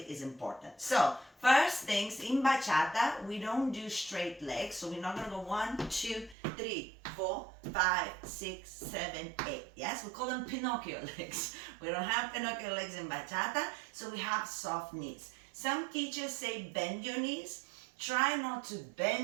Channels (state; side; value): drops out; left; at 6.4 s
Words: is important. So first things, in bachata, we don't do straight legs. So we're not going to go 1, 2, 3, 4, 5, 6, 7, 8. Yes, we call them Pinocchio legs. We don't have Pinocchio legs in bachata, so we have soft knees. Some teachers say bend your knees. Try not to